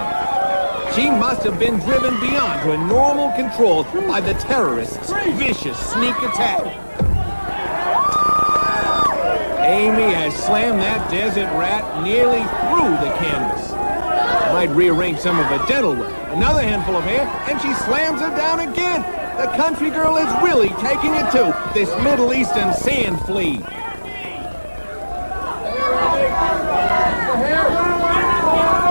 She must have been driven beyond her normal control by the terrorist's vicious sneak attack. Amy has slammed that desert rat nearly through the canvas. Might rearrange some of her dental work. Another handful of hair, and she slams her down again. The country girl is really taking it to this Middle Eastern sand flea.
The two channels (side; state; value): both; inverted; correlation -1.00